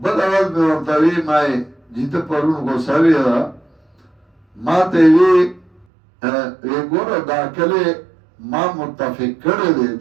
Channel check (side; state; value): left; drops out; at 5.9 s